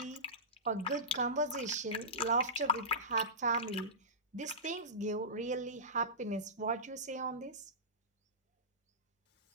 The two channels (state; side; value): normal; both; correlation -0.18